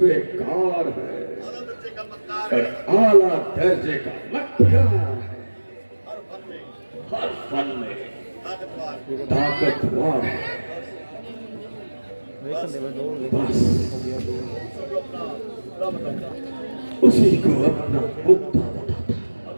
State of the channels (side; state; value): both; inverted; correlation -1.00